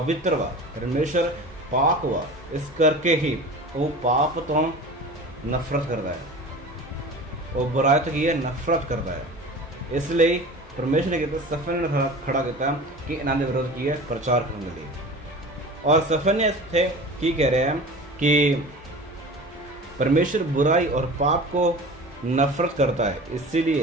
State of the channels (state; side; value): normal; both; correlation 0.37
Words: हुआ परमेश्वर पाक हुआ, इस करके ही वो पाप तो नफरत करता है, वो बुराई तो की है नफरत करता है। इसलिए परमेश्वर ने कहते सफन्याह ने खड़ा किया कि इन्हों के विरोध की है प्रचार करने के लिए। और सफन्याह थे की कह रहे हैं कि परमेश्वर बुराई और पाप को नफरत करता है,